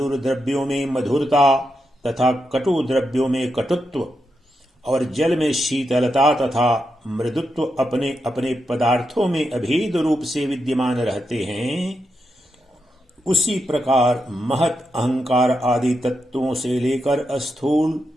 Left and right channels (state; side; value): normal; both; correlation 0.85